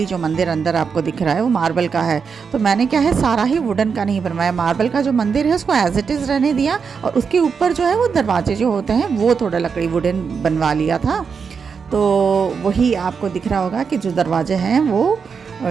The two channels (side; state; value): left; quieter; 5.9 dB